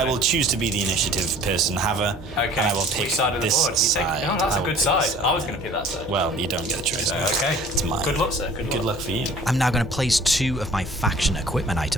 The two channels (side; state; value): both; normal; correlation 0.49